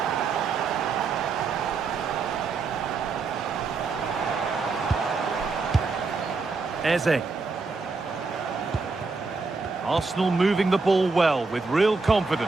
Eze. Arsenal moving the ball well with real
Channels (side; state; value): left; quieter; 4.2 dB